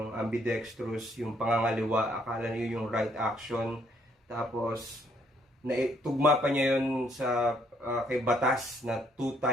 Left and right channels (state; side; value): normal; both; correlation 0.68